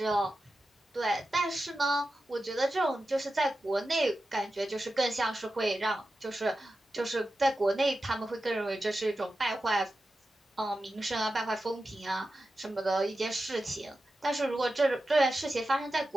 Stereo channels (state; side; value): normal; both; correlation 0.92